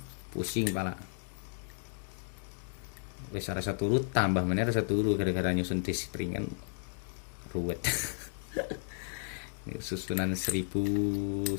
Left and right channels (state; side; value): silent; right; 55 dB below the other